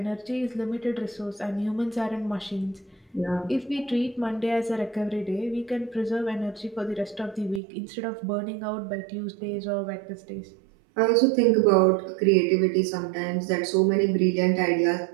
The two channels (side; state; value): left; drops out; at 7.6 s